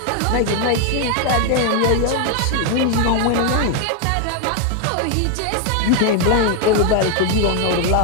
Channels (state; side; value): different; both; correlation 0.01